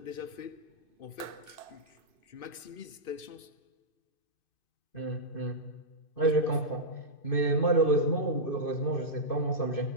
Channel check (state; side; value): late; right; 2.5 ms